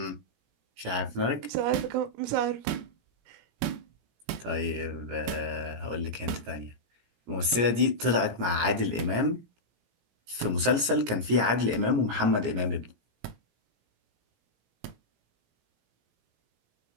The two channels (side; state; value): left; late; 17 ms